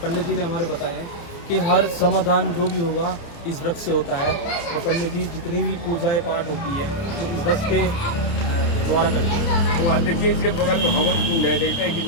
पंडित जी ने हमारे बताया है कि हर समाधान जो भी होगा इस वृक्ष से होता है। तो पंडित जी जितनी भी पूजाएं पाठ होती है तो इस वृक्ष के द्वारा करते हैं। वो देखिए इसके बगल में हवन कुंड है, देखते हैं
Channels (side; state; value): right; late; 29 ms